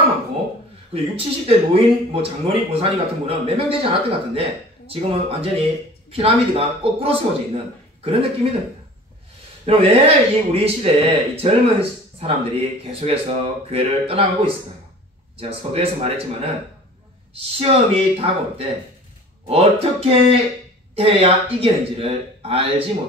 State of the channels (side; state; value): both; normal; correlation 0.44